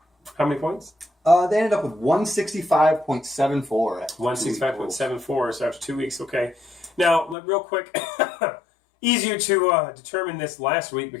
How many points? They ended up with 165.74. 165.74, so after 2 weeks, okay. Now, real quick, easier to determine this last week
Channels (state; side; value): drops out; right; at 7.4 s